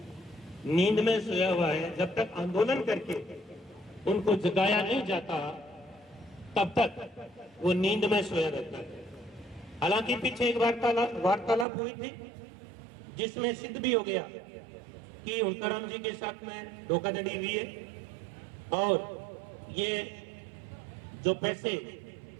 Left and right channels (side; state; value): left; drops out; at 11.7 s